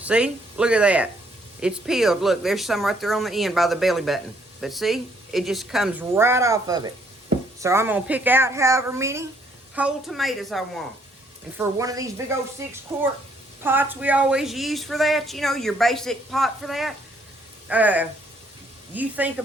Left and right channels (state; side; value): normal; both; correlation 0.68